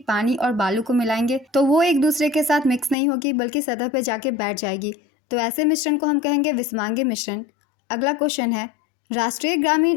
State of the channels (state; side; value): drops out; right; at 3.0 s